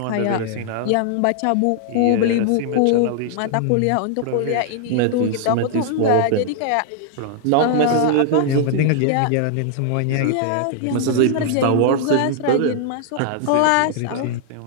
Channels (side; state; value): both; different; correlation -0.01